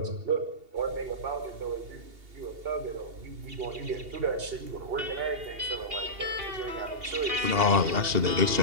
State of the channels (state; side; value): late; left; 2.7 ms